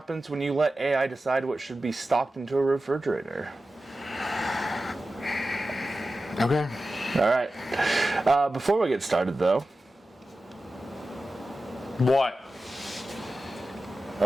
when you let AI decide what should be stocked into a refrigerator. Okay. All right. Before we get started, though, What?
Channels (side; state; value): both; normal; correlation 0.94